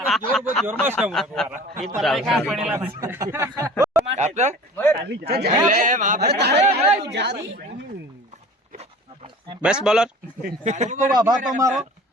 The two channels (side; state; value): both; normal; correlation 0.43